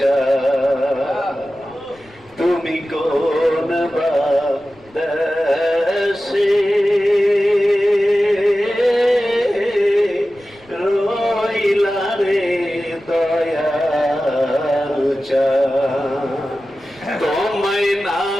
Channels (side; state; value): left; noise; rumble, 28 dB below the sound